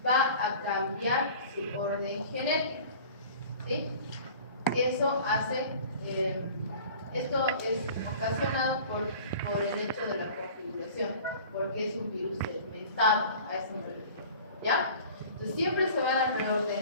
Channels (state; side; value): inverted; both; correlation -0.44